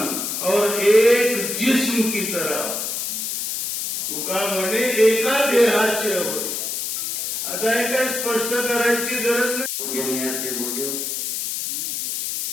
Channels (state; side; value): noise; left; hiss, 3 dB below the sound